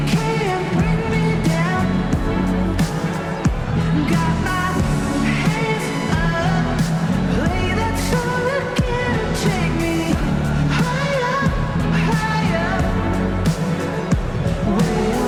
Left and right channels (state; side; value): identical; both; correlation 1.00